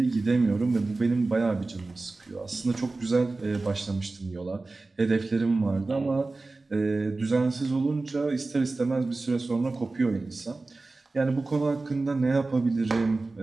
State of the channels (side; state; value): left; quieter; 3.4 dB